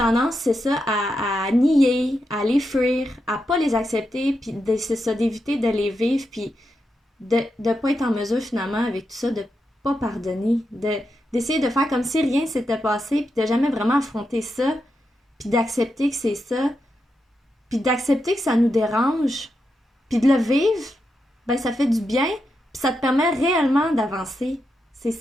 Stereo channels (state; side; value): normal; both; correlation 0.85